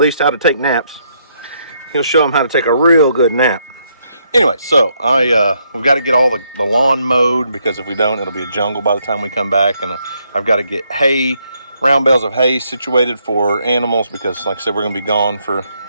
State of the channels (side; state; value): both; inverted; correlation -0.74